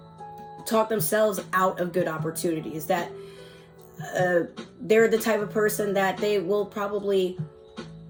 talk themselves out of good opportunities. That they're the type of person that they will probably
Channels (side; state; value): both; identical; correlation 1.00